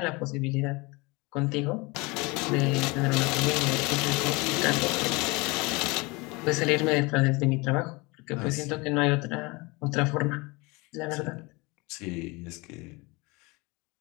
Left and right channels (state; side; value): quieter; right; 25.5 dB